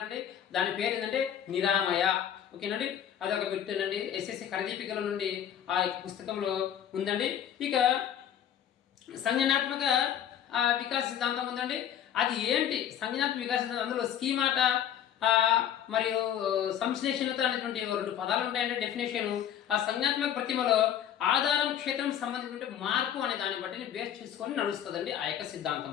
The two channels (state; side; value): quieter; right; 9.8 dB